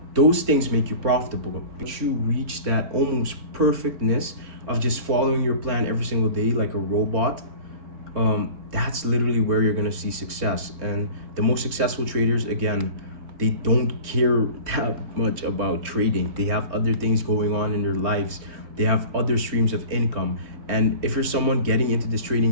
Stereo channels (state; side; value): late; left; 3.6 ms